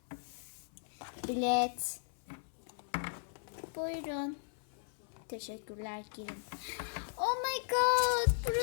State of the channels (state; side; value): silent; right; 53 dB below the other